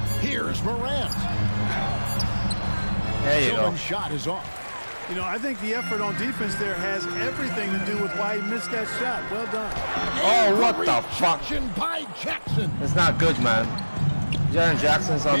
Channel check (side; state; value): both; inverted; correlation -1.00